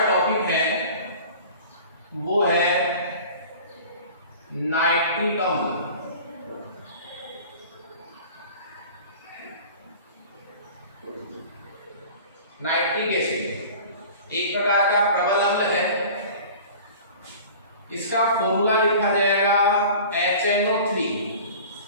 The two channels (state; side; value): inverted; both; correlation -0.42